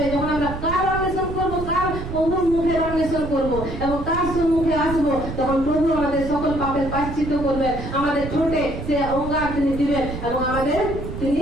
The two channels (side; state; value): right; noise; rumble, 8 dB below the sound